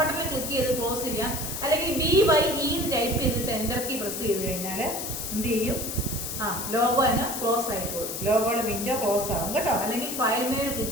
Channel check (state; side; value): noise; left; hiss, 5 dB below the sound